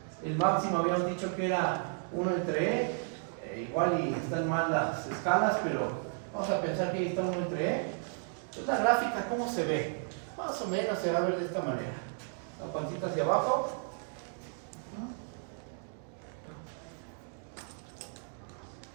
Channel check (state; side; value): silent; left; 55 dB below the other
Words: El máximo habíamos dicho que era 1 entre e. Igual y están mal las escalas, pero vamos a pensar que ahí está 1 entre e. Entonces la gráfica, ¿cómo se ve? Más o menos se va a ver de esta manera. La pancita hacia abajo.